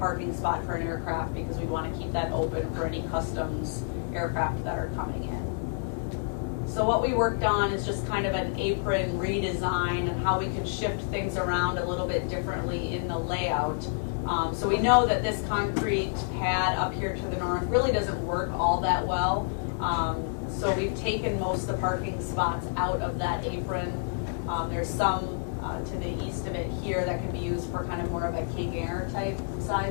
spot for an aircraft because we want to keep that open for any customs aircraft that are coming in. So what we worked on is just kind of an apron redesign and how we could shift things around a little bit differently in the layout. So we know that this concrete pad up here to the north really doesn't work all that well. So we've taken most of the parking spots out of that apron. There's some to the east of it here that can be used for kind of more of a King Air type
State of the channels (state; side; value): silent; right; digital silence